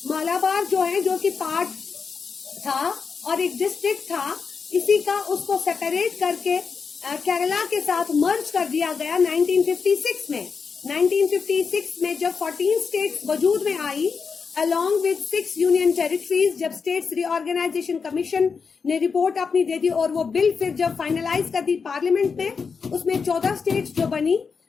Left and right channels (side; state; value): right; quieter; 5.5 dB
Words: मालाबार जो है जो कि पार्ट था और एक डिस्ट्रिक्ट था, इसी का उसको सेपरेट करके केरला के साथ मर्ज कर दिया गया 1956 में। 1956 में जब 14 स्टेट्स वजूद में आई अलॉन्ग विद 6 यूनियन टेरिटरीज, जब स्टेट्स रीऑर्गेनाइजेशन कमीशन ने रिपोर्ट अपनी दे दी और वो बिल फिर जब फाइनलाइज कर दी पार्लियामेंट में, उसमें 14 स्टेट्स जो बनी,